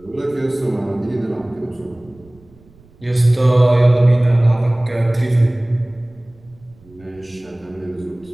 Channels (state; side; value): noise; right; rumble, 27 dB below the sound